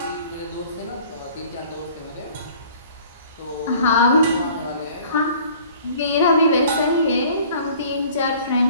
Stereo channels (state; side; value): inverted; both; correlation -0.51